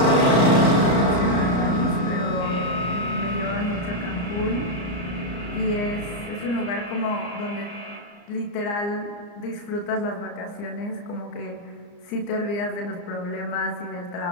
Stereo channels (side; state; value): right; late; 34 ms